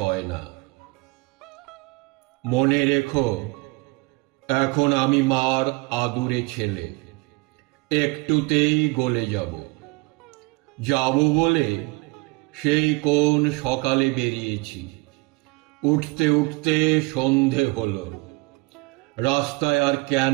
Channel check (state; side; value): quieter; left; 25.6 dB